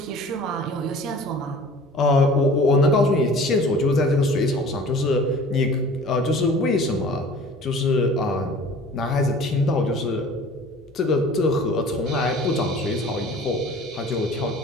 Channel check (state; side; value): normal; both; correlation 0.46